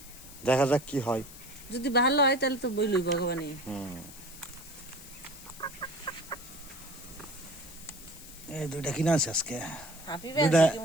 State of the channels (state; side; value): noise; left; hiss, 17 dB below the sound